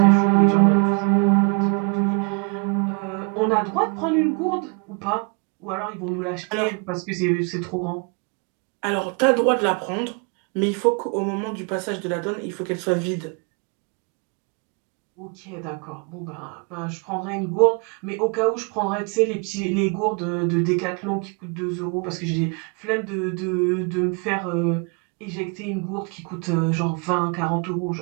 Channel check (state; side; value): quieter; left; 35.4 dB